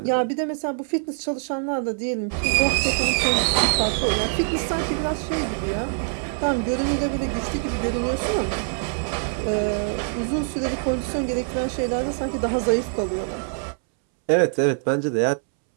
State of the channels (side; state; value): left; silent; 63 dB below the other